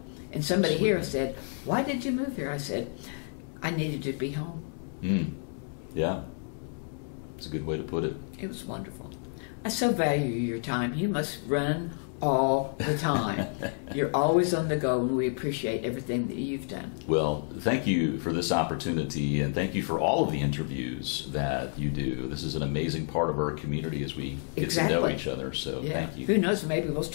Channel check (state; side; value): silent; right; 56 dB below the other